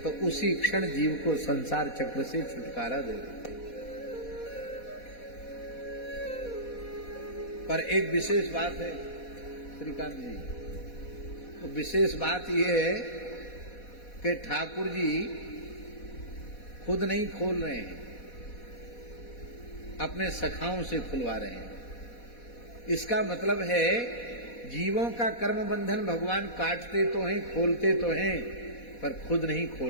तो उसी क्षण जीव को संसार चक्र से छुटकारा दे देते। पर एक विशेष बात है श्रीकांत जी, तो विशेष बात यह है कि ठाकुर जी खुद नहीं खोल रहे हैं, अपने सखाओं से खुलवा रहे हैं। इसका मतलब है जीवों का कर्म बंधन भगवान काटते तो हैं, खोलते तो हैं, पर खुद नहीं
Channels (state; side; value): late; right; 4.1 ms